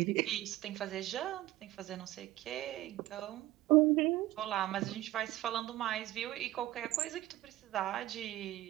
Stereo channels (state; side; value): quieter; left; 16.0 dB